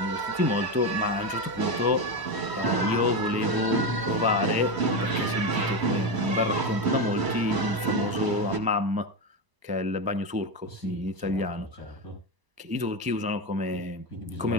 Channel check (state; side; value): late; left; 1.0 ms